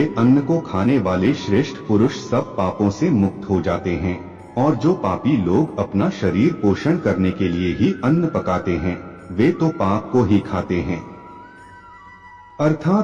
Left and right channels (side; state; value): both; identical; correlation 1.00